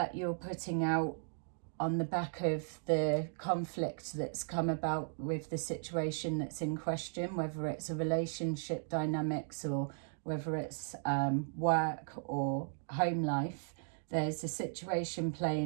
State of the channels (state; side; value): silent; left; digital silence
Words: you're putting out on the back of the conflict that's come about with the situation that's in question, whether it's a relationship dynamics or whether it's work or home life, there's a situation